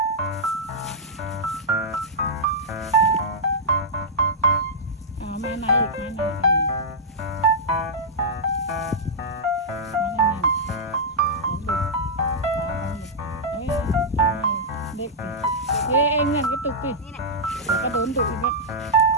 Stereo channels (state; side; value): normal; both; correlation -0.09